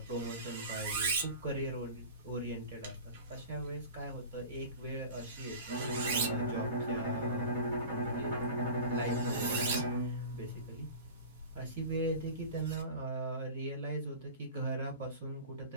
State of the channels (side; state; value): both; inverted; correlation -0.36